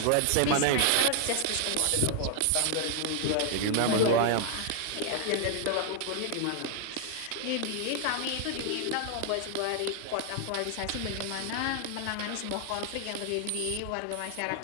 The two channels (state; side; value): different; both; correlation 0.00